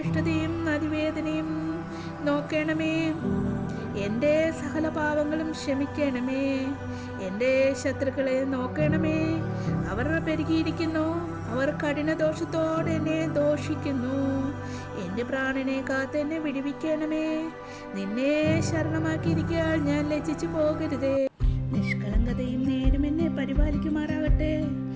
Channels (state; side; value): identical; both; correlation 1.00